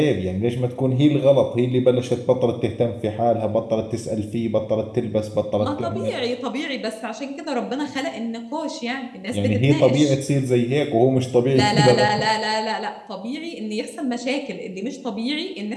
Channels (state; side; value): identical; both; correlation 1.00